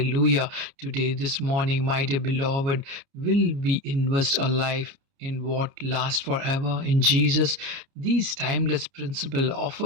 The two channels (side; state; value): left; late; 29 ms